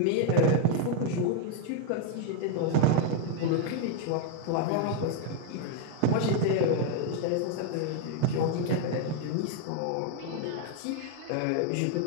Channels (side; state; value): both; different; correlation 0.01